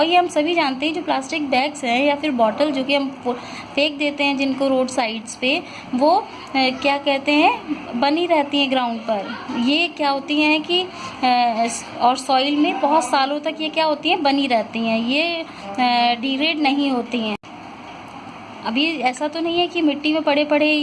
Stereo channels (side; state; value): both; identical; correlation 1.00